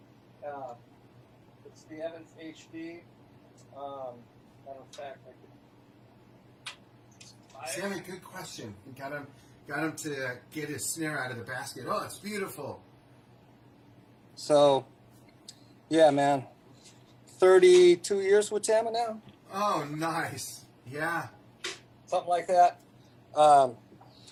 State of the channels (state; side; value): identical; both; correlation 1.00